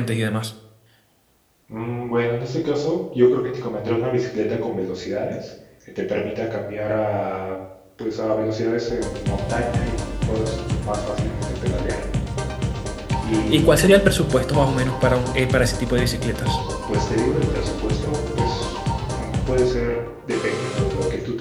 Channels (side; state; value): both; identical; correlation 1.00